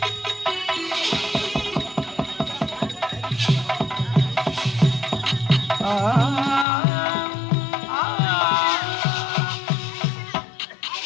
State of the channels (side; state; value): right; drops out; at 6.7 s